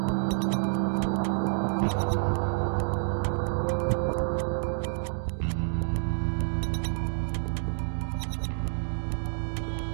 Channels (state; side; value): silent; left; digital silence